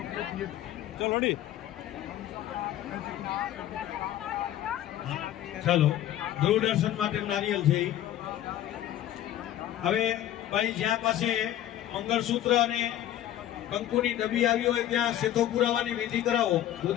ચાલો દૂરદર્શન માટે નારિયેલ છે ઈ. હવે ભાઈ જ્યાં પાસે મંગળસૂત્ર અને કંકુની ડબ્બી આવી હોય ત્યાં શેથો પુરાવાની વિધિ કરાવો.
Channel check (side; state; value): right; quieter; 12.3 dB